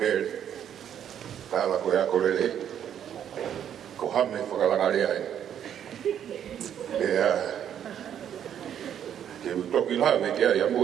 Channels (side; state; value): left; quieter; 9.5 dB